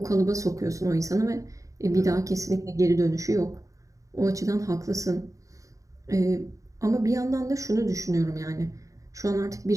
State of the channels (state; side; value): late; left; 0.16 ms